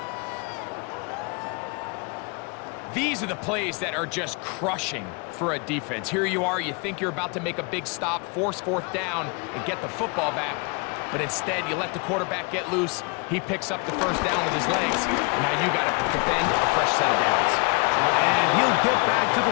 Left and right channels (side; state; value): right; quieter; 31.6 dB